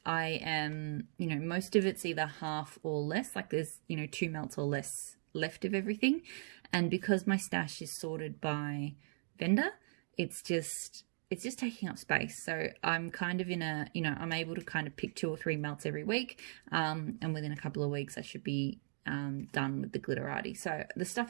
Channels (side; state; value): left; silent; digital silence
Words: am, you know, most of it's either half or less. Like, there's, you know, 2 melts or less left of everything. And because my stash is sorted by vendor, it's just taking up space. So I'm kind of in a, you know, I'm able to kind of pick 2 or 3 melts every week. And within a couple of weeks, I should be done with the Glitterati. So the